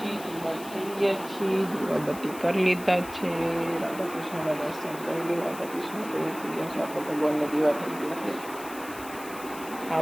તૈયાર થઈ ગયા છીએ, દીવાબત્તી કરી લીધા છે, રાધા કૃષ્ણના દર્શન કરી લે. રાધા કૃષ્ણ તૈયાર થઈ ગયા છે, આપણે ભગવાનને દીવા થઈ ગયા છે.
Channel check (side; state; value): left; noise; hiss, 15 dB below the sound